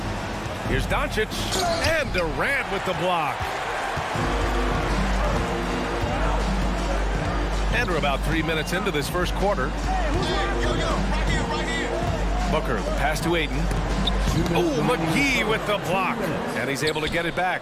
Here's Doncic. And Durant with the block. And we're about 3 minutes into this first quarter. Booker, the pass to Ayton. Oh, McGee with the block. And he's able to get it back.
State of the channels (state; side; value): identical; both; correlation 1.00